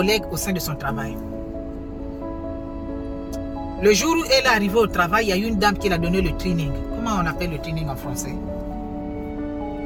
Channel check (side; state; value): both; identical; correlation 1.00